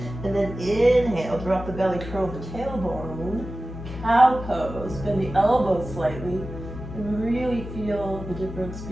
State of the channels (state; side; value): noise; left; hum, 10 dB below the sound